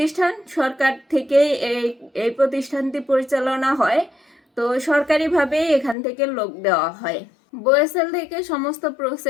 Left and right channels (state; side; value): drops out; right; at 6.0 s